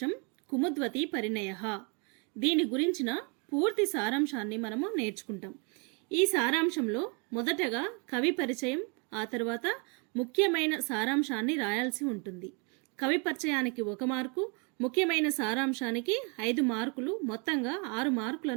కుముద్వతి పరిణయః దీని గురించిన పూర్తి సారాంశాన్ని మనము నేర్చుకుంటాం. ఈ సారాంశంలో మొదటగా కవి పరిచయం, ఆ తర్వాత ముఖ్యమైన సారాంశాన్ని రాయాల్సి ఉంటుంది. కవి పరిచయానికి 1 మార్కు, ముఖ్యమైన సారాంశానికి 5 మార్కులు, మొత్తంగా 6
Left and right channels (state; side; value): quieter; left; 34.4 dB